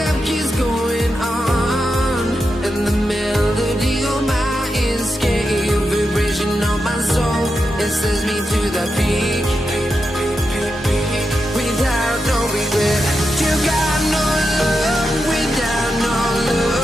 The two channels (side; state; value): both; normal; correlation 0.88